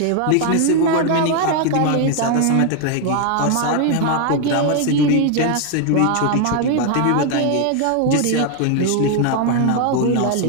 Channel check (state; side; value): different; both; correlation 0.00